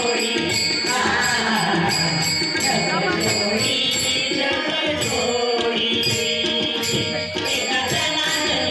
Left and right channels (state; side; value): identical; both; correlation 1.00